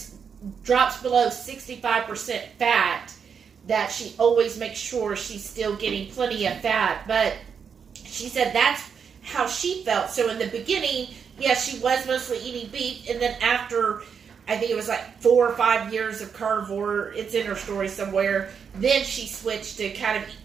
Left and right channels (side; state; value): left; quieter; 6.7 dB